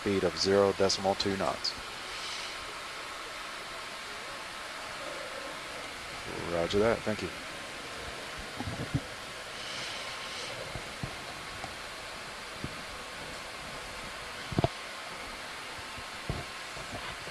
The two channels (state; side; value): identical; both; correlation 1.00